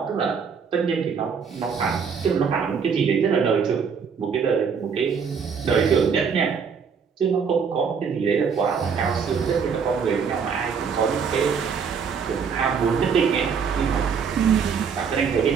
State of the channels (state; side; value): quieter; left; 6.2 dB